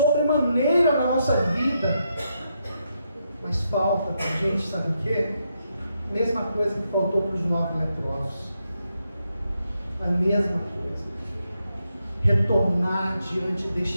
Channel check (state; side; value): inverted; both; correlation -0.82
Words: na nossa vida, mas falta para a gente, sabe o quê? Mesma coisa que faltou para os 9 leprosos. A mesma coisa. Retornar diante